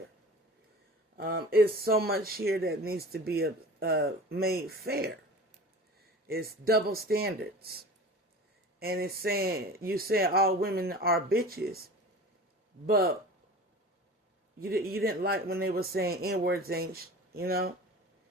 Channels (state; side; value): normal; both; correlation 0.38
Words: It's so much here that needs to be made fair. It's double standards. And it's saying, you say all women are bitches, but you didn't like when they were saying N-words ain't, they didn't